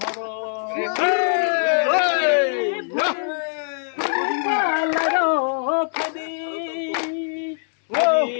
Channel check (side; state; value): right; silent; digital silence